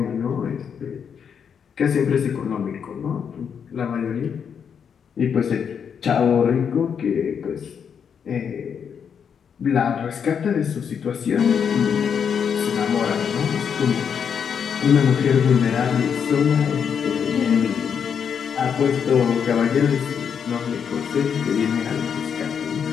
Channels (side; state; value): right; quieter; 7.3 dB